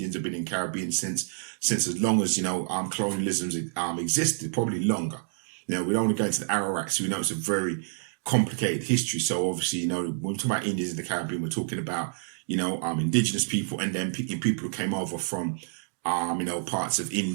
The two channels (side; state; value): left; silent; digital silence